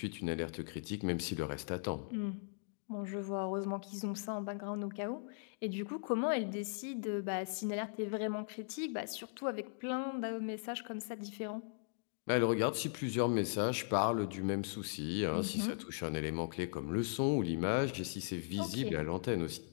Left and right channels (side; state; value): right; silent; digital silence